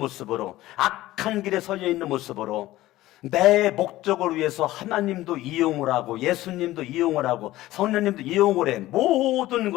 악한 길에 서려 있는 모습으로 내 목적을 위해서 하나님도 이용을 하고 예수님도 이용을 하고 성령님도 이용을 해. 모든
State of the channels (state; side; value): quieter; right; 16.3 dB